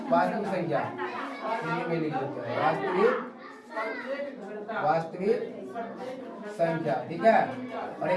वास्तविक संख्या, हिंदी में लिख देते हैं वास्तविक संख्या, ठीक है। और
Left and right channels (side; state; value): both; identical; correlation 1.00